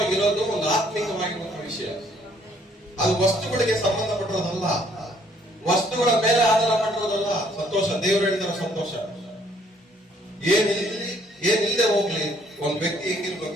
ಒಂದು ಆತ್ಮಿಕವಾಗಿರುವಂತಹ ವಿಷಯ. ಅದು ವಸ್ತುಗಳಿಗೆ ಸಂಬಂಧಪಟ್ಟಿರೋದಲ್ಲ, ವಸ್ತುಗಳ ಮೇಲೆ ಆಧಾರ ಪಟ್ಟಿರೋದಲ್ಲ ಸಂತೋಷ. ದೇವರು ಹೇಳಿದಾರೆ ಸಂತೋಷ ಏನಿಲ್ಲದೆ ಹೋಗ್ಲಿ, ಒಂದ್ ವ್ಯಕ್ತಿ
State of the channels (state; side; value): normal; both; correlation 0.64